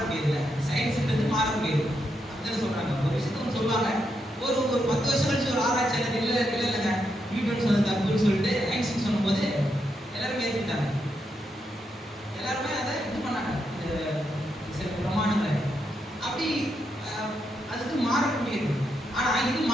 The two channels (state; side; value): normal; both; correlation 0.82